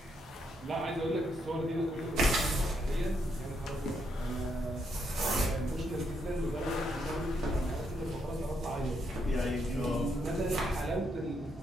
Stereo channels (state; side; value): normal; both; correlation 0.77